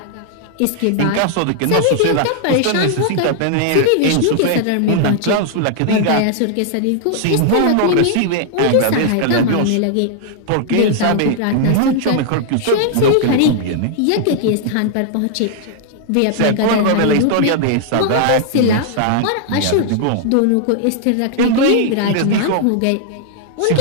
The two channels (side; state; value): both; different; correlation -0.01